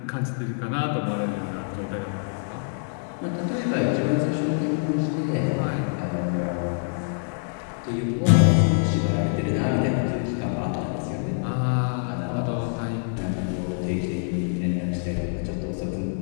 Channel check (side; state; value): right; silent; 61 dB below the other